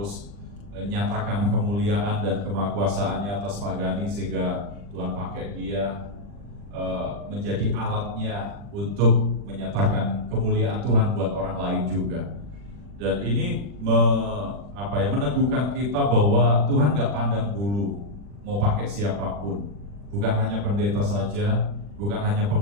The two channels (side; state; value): left; late; 40 ms